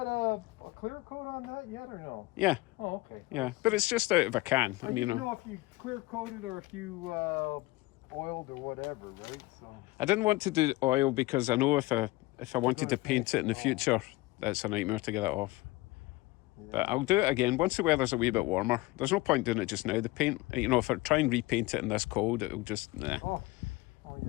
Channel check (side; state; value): right; quieter; 20.8 dB